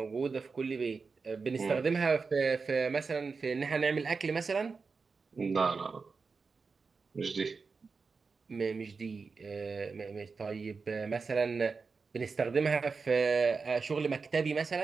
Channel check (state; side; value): quieter; left; 4.7 dB